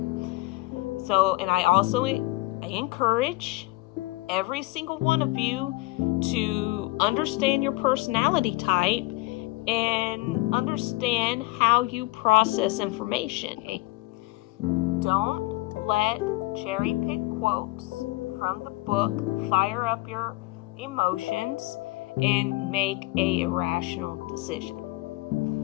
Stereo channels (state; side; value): quieter; right; 21.4 dB